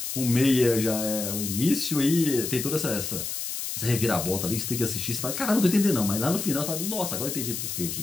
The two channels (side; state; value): left; noise; hiss, 5 dB below the sound